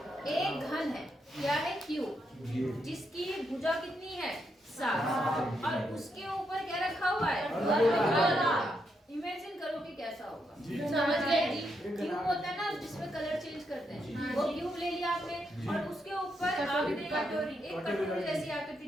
एक घन है, क्या है? क्यू, जिसकी भुजा कितनी है? 7, और उसके ऊपर क्या रखा हुआ है? अर्धगोला। इमेजिन करो कि कैसा होगा। समझ गए? क्यूब होता है ना जिसमें कलर चेंज करते हैं, वो क्यूब ले लिया आपने और उसके ऊपर आपने एक कटोरी जैसी आकृति,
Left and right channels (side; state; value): both; normal; correlation 0.80